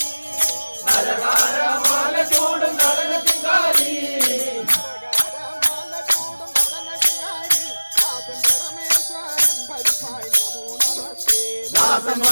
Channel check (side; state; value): both; inverted; correlation -1.00